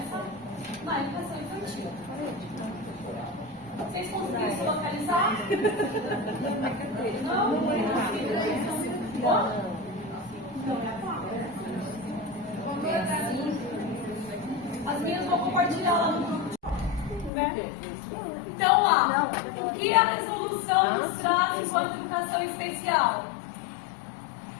na educação infantil. Vocês conseguiram se localizar? Não? Não? As minhas vou compartilhar lá no grupo. Né? Então, lá, o que a resolução nos traz enquanto educação especial?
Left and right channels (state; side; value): drops out; right; at 17.3 s